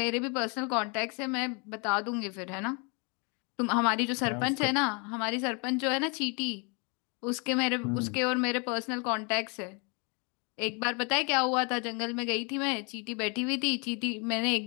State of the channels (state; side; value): quieter; right; 33.2 dB